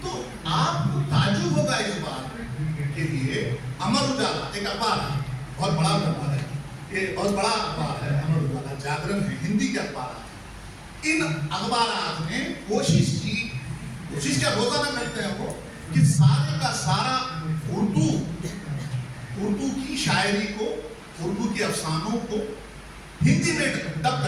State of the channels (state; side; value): identical; both; correlation 1.00